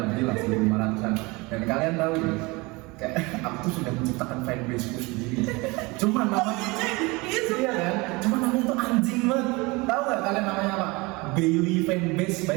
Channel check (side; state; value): left; quieter; 24.9 dB